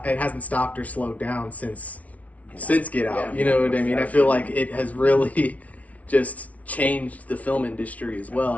or slowed down since Get Out. You know what I mean? I feel like it has really just changed the film industry as well.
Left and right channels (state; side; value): late; right; 0.068 ms